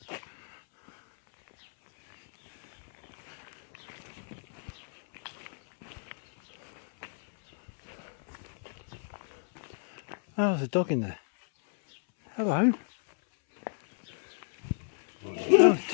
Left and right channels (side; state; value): right; silent; 56 dB below the other